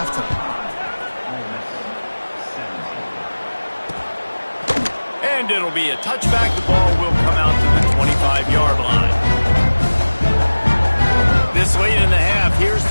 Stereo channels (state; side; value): inverted; both; correlation -1.00